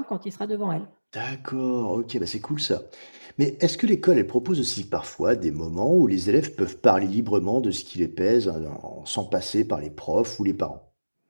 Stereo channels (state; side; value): inverted; both; correlation -1.00